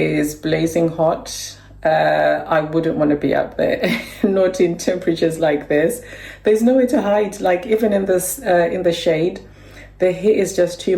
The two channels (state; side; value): identical; both; correlation 1.00